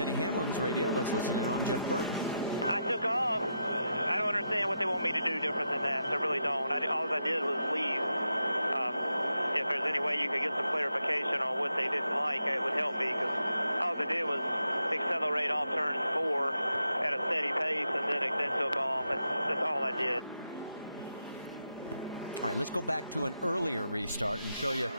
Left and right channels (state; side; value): inverted; both; correlation -0.84